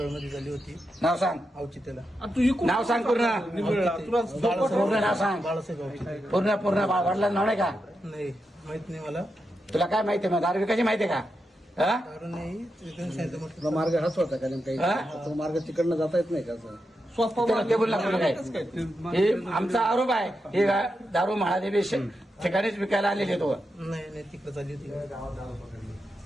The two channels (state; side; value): normal; both; correlation 0.87